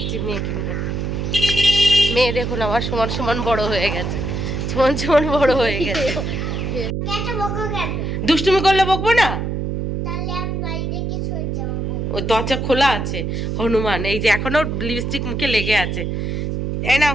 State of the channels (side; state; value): right; noise; hum, 2 dB below the sound